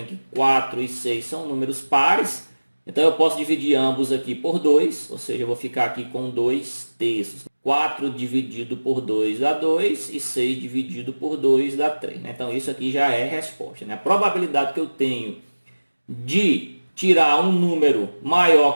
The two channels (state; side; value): inverted; both; correlation -1.00